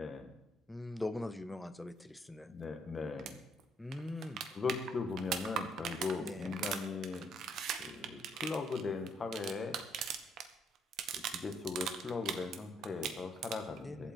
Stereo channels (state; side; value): normal; both; correlation 0.69